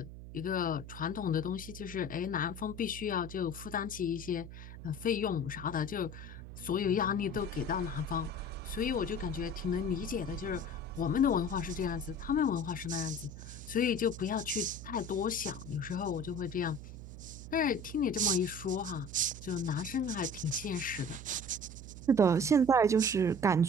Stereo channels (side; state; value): right; noise; hum, 12 dB below the sound